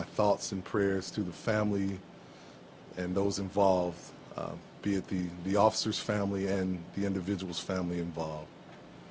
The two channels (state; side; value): identical; both; correlation 1.00